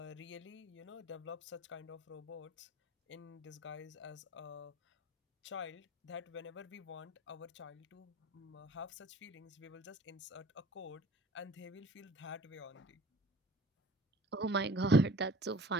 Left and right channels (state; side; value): normal; both; correlation 0.48